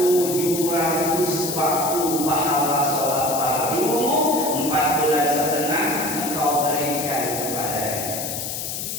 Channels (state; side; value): noise; left; hiss, 5 dB below the sound